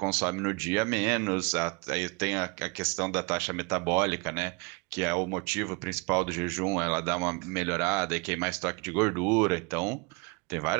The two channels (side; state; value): left; quieter; 30.1 dB